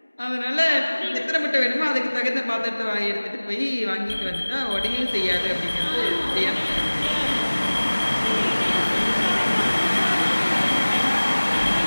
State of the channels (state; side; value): inverted; both; correlation -1.00